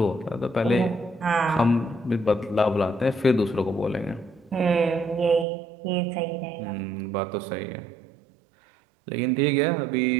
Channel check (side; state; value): left; drops out; at 5.5 s